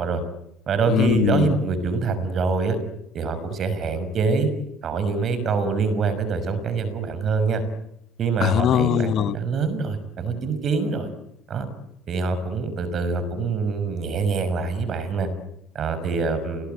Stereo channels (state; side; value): normal; both; correlation 0.56